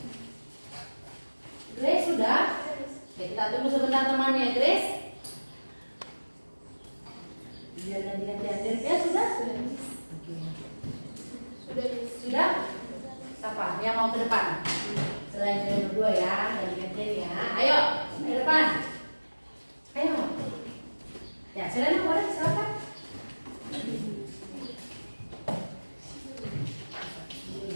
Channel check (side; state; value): both; inverted; correlation -1.00